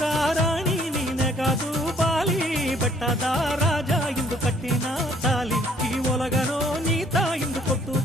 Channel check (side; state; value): both; normal; correlation 0.62